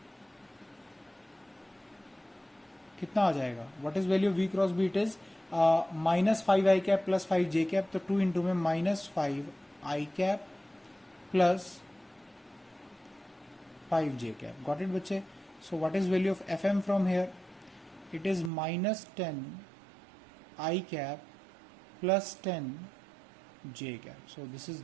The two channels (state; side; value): drops out; left; at 18.5 s